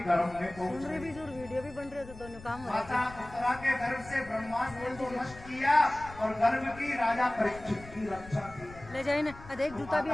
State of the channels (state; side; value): noise; left; rumble, 17 dB below the sound